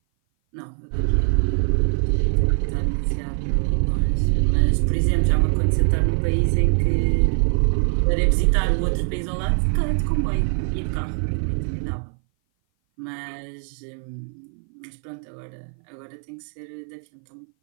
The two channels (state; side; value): silent; left; 58 dB below the other